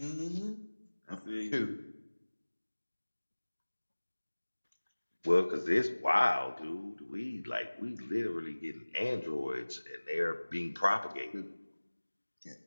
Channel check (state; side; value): inverted; both; correlation -1.00